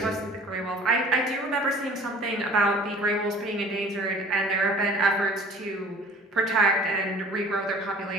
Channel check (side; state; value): both; normal; correlation 0.48